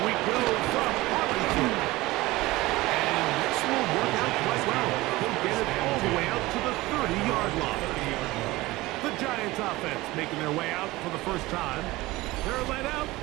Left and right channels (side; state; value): left; quieter; 19.6 dB